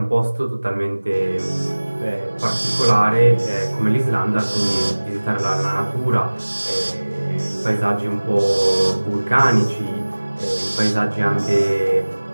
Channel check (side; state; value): both; inverted; correlation -1.00